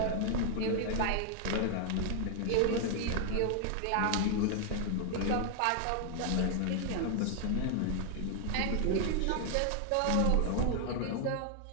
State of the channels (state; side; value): different; both; correlation 0.00